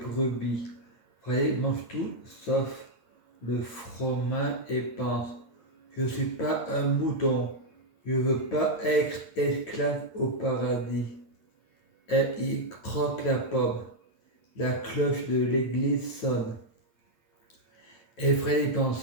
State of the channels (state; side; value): late; right; 8.7 ms